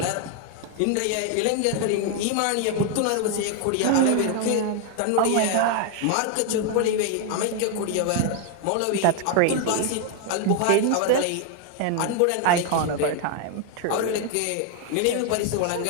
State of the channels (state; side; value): different; both; correlation 0.00